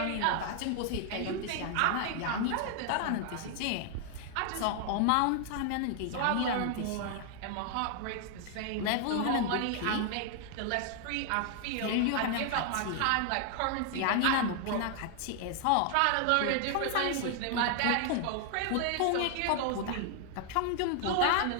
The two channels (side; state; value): both; different; correlation 0.00